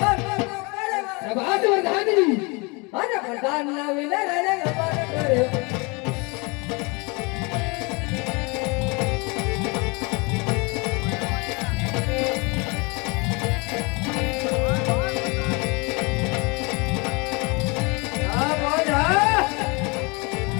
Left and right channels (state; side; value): quieter; right; 28.9 dB